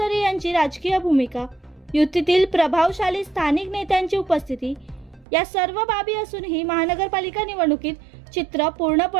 यांची राजकीय भूमिका, युतीतील प्रभावशाली स्थानिक नेत्यांची उपस्थिती, या सर्व बाबी असूनही महानगरपालिका निवडणुकीत चित्र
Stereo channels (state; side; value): drops out; left; at 5.2 s